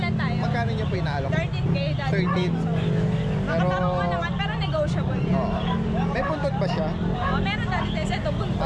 tayo. Magkano niyo po inaalok? 13K dati. 13. Pero, Makatanong ko naman, pero negotiable yun. oo. May buntot ba siya? Oo, meron dati din. Ito, buntot.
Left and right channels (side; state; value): both; identical; correlation 1.00